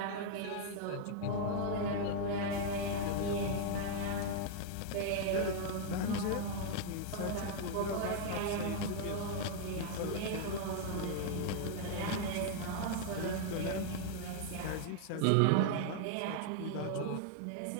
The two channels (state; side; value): different; both; correlation -0.01